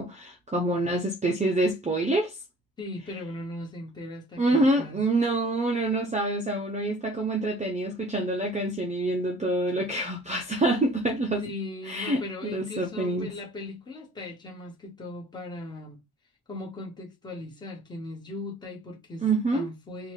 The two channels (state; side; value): normal; both; correlation 0.52